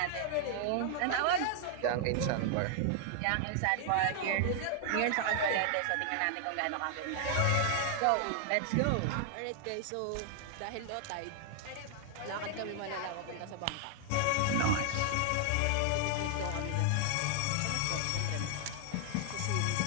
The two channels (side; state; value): both; different; correlation 0.00